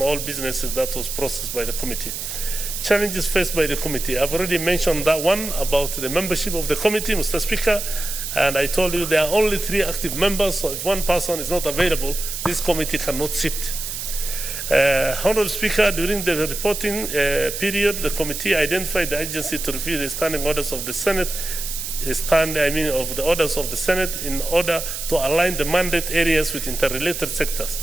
all businesses that was processed by the committee. Challenges faced by the committee. I've already mentioned that one about the membership of the committee, Mr. Speaker, and I told you there are only 3 active members, so if one person is not available, this committee cannot sit. Honorable Speaker, during the reporting period, the committee identified the agency to review the standing orders of the Senate, of the orders of the Senate in order to align the mandate areas with interrelated sectors.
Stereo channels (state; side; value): noise; right; hiss, 6 dB below the sound